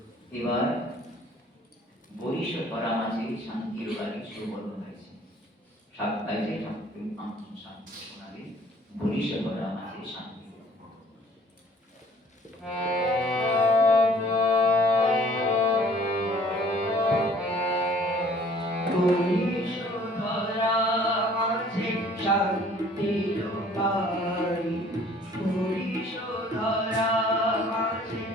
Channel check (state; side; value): normal; both; correlation 0.55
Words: এবার বরিশ করা মাঝে শান্তির বাড়ি সুবর্ণ হয়েছে। সাতটায় যে ঠাকুর শান্তি শোনাবে, বরিশ করা মাঝে শান্তি। বরিশ করা মাঝে শান্তির বাড়ি, বরিশ করা মাঝে